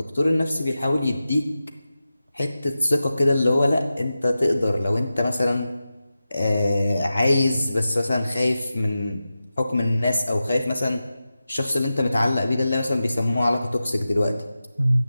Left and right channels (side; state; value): both; inverted; correlation -0.93